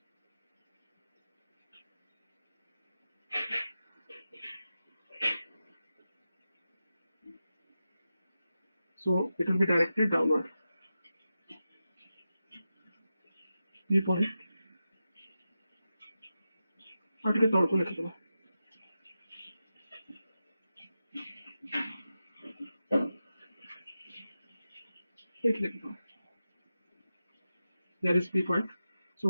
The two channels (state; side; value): inverted; both; correlation -0.91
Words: So it will be directed downward. P point. और टिके तौर को लिखि दो. लिखि दो. There is P point. So